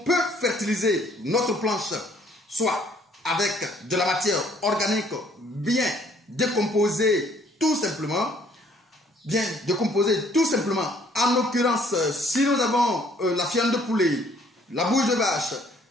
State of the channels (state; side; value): normal; both; correlation 0.62